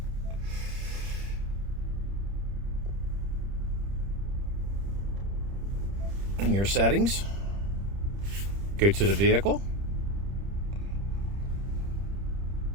In your settings, go to the vehicle.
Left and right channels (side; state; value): left; late; 30 ms